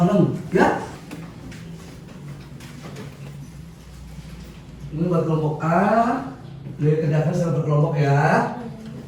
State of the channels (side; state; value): both; identical; correlation 1.00